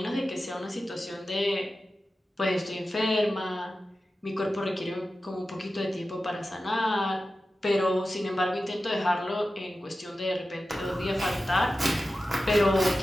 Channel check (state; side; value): normal; both; correlation 0.93